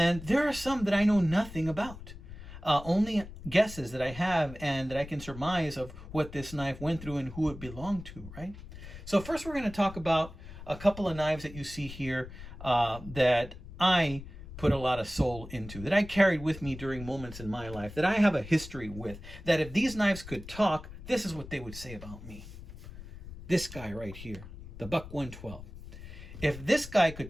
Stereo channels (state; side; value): noise; left; rumble, 14 dB below the sound